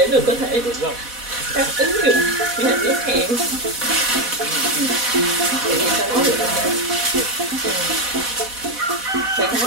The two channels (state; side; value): late; left; 4.1 ms